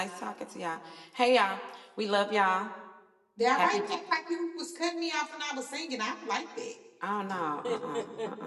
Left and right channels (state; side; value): identical; both; correlation 1.00